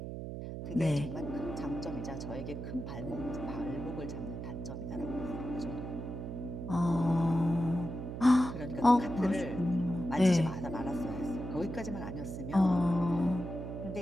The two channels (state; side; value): noise; right; hum, 7 dB below the sound